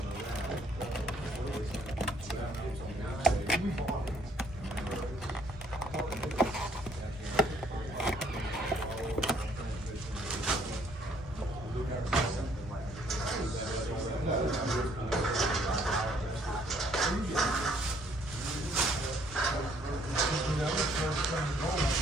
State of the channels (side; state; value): both; normal; correlation 0.65